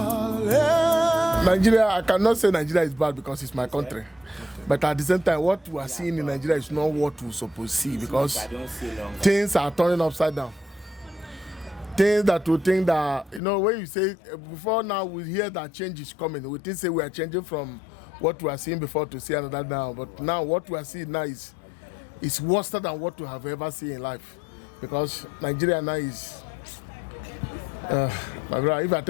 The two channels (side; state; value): right; drops out; at 13.4 s